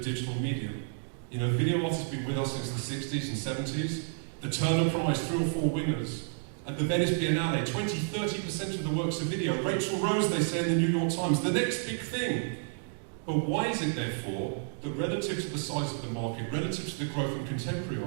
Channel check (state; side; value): silent; left; digital silence